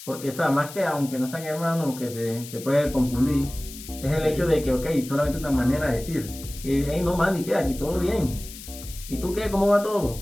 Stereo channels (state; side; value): noise; left; hiss, 14 dB below the sound